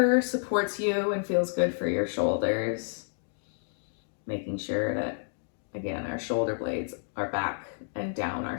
supports you and feels good for your shoulders. Making sure that, again, our shoulder blades are back and down our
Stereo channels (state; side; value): silent; right; digital silence